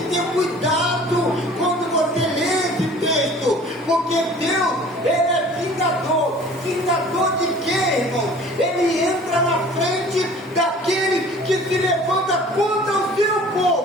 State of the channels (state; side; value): normal; both; correlation 0.47